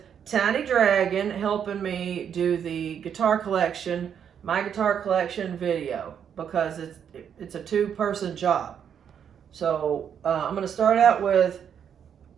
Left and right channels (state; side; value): quieter; left; 8.2 dB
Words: Tiny Dragon helping me do the guitar collection, my guitar collection video, because it's a two-person job. So I'm going to start out with